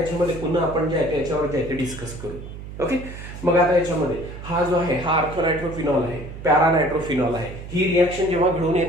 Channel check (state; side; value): noise; right; hum, 11 dB below the sound